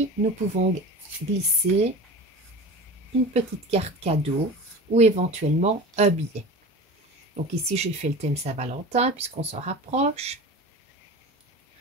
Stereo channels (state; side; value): normal; both; correlation 0.33